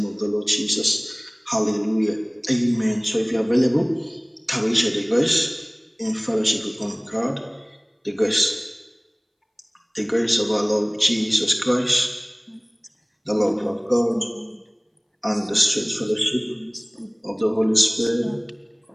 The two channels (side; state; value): both; identical; correlation 1.00